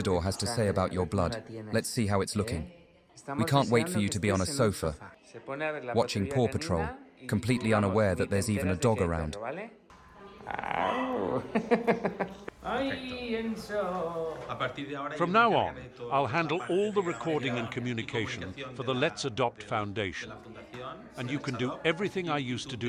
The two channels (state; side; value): identical; both; correlation 1.00